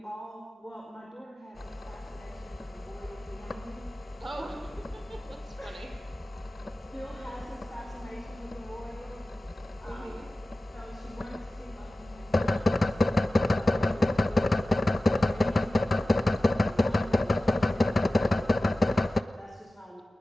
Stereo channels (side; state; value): both; normal; correlation 0.96